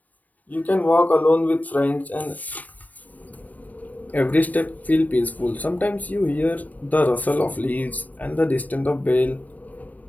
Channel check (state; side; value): late; right; 0.076 ms